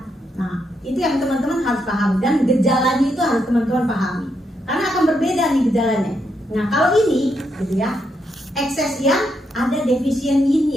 Nah itu yang teman-teman harus pahami, dan gejalanya itu harus teman-teman pahami, karena akan berbeda nih gejalanya. Nah kalau ini, gitu ya, ekses yang ada defisien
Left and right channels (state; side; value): normal; both; correlation 0.80